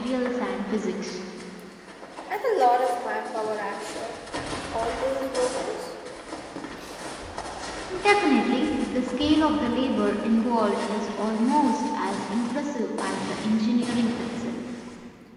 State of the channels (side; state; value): both; identical; correlation 1.00